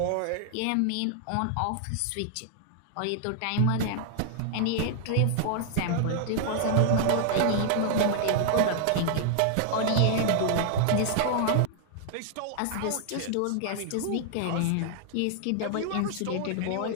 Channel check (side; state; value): both; different; correlation 0.00